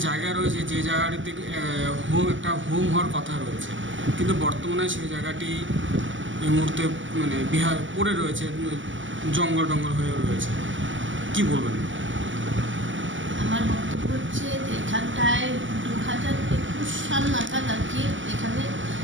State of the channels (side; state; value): left; late; 0.55 ms